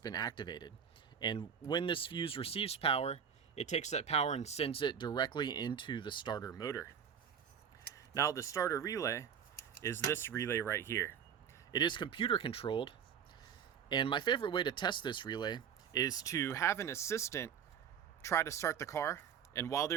activated. And when this fuse receives power, it takes that power and sends it directly into the starter motor. Now, the starter relay is this relay right here. It is computer controlled, and my favorite way to test this relay is to have an assistant try to start the car, and while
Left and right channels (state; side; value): quieter; left; 7.9 dB